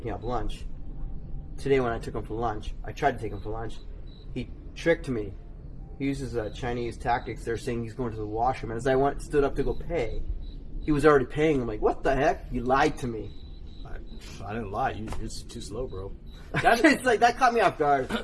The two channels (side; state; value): both; identical; correlation 1.00